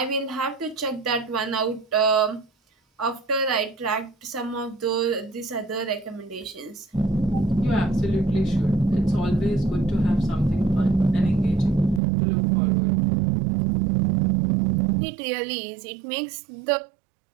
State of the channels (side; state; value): left; drops out; at 12.0 s